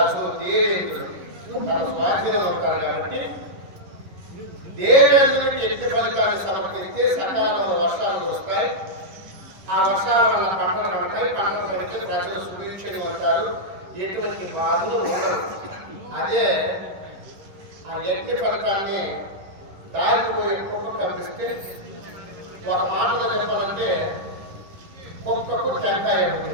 దేవేంద్రుడు తన స్వాధీనంలో ఉంటాడు కాబట్టి దేవేంద్రుడికి యజ్ఞ ఫలితాన్ని సమర్పిస్తే సకాలంలో వర్షాలు వస్తాయి. ఆ వర్షాల వల్ల పంటలు పండుతాయి. పంటలు పండితే ప్రజలు సుభిక్షంగా ఉంటారు. ఎటువంటి బాధలు ఉండవు. అదే ఆ యజ్ఞ ఫలితాన్ని దారిపోయే కుక్క కనిపిస్తే ఒక మాటలో చెప్పాలంటే కుక్కకు టెంకాయ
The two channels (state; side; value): late; left; 10 ms